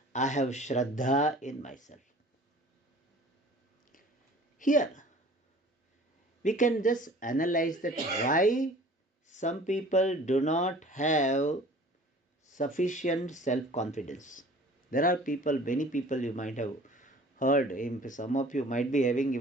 I have Shraddha in myself. Here, we can just analyze that why some people do not have sufficient self-confidence. There are people, many people you might have heard, some of you might be having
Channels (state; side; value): normal; both; correlation 0.47